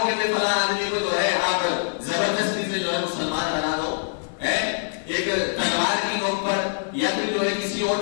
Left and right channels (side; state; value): right; silent; digital silence